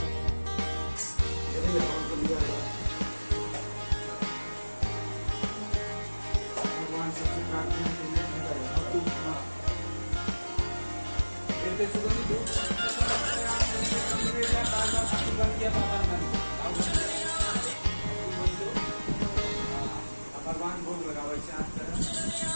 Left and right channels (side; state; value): both; inverted; correlation -1.00